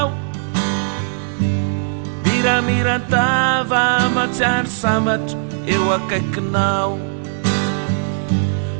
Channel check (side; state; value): left; silent; 67 dB below the other